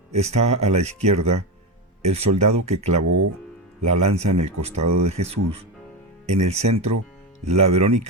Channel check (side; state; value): both; normal; correlation 0.15